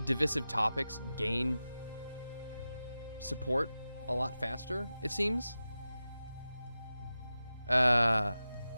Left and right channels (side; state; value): both; inverted; correlation -0.93